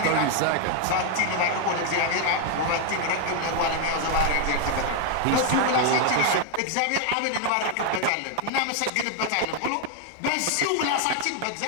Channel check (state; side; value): different; both; correlation 0.00